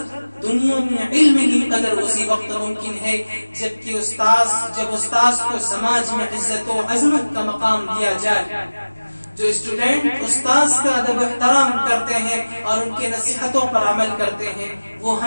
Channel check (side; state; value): both; inverted; correlation -1.00